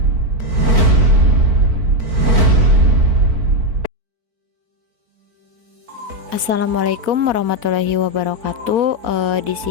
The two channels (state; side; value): late; left; 4.5 ms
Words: Assalamualaikum warahmatullahi wabarakatuh. Di